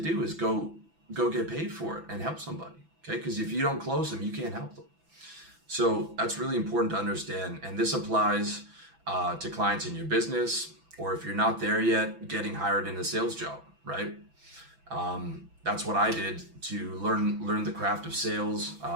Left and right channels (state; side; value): late; left; 6.0 ms